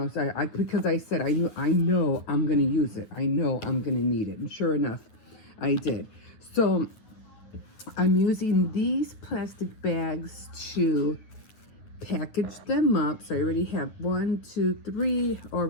so because I said, I know I'm going to use it. I know I'm going to need it. And sure enough, I did. So I'm using these plastic bags to package them up. So I already have 1, 2, 3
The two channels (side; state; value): right; late; 9.5 ms